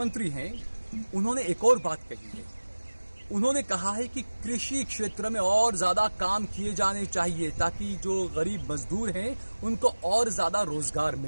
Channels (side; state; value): both; inverted; correlation -1.00